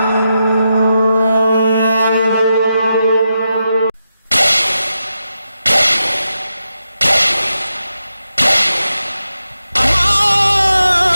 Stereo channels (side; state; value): both; inverted; correlation -0.87